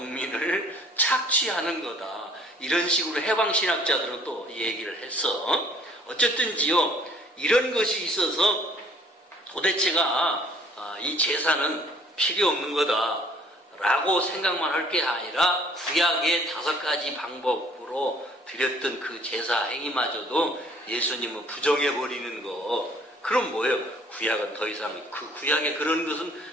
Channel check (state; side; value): normal; both; correlation 0.57